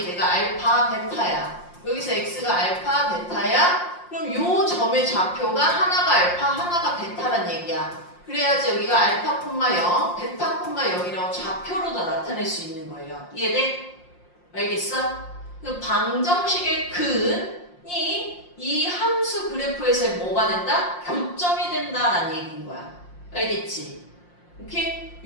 내가 알파, 베타야. 여기서 x가 알파, 베타야. 그럼 요 점의 좌표가 하나가 알파, 하나가 베타란 얘기야. 그래야지 여기가 알파, 0, 베타, 0이라고 좌표로 다 나타낼 수 있는 거예요. 이해돼? 알겠어? 그 방정식의 근이 이 함수 그래프에서 뭐가 된다? 교점이 된다라는 얘기인 거야. 알겠지? 오케이?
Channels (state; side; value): late; right; 5.7 ms